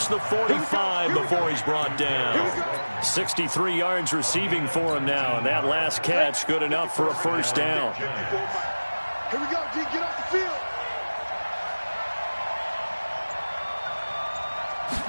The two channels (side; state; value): both; inverted; correlation -1.00